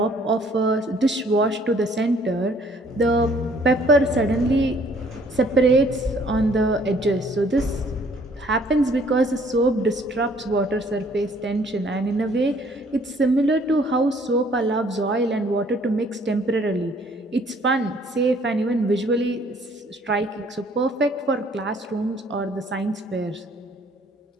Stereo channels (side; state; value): both; normal; correlation 0.60